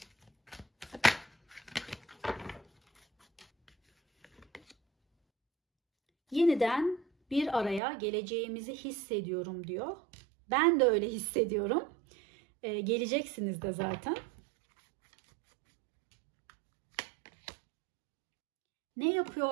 Yeniden bir araya geleceğimizi hissediyorum diyor. Ben de öyle hissediyorum. Geleceksiniz de zaten. Ne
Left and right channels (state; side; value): drops out; left; at 7.8 s